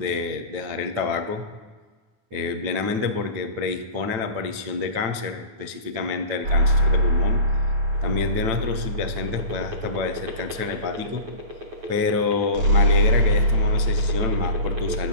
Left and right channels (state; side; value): late; left; 9.0 ms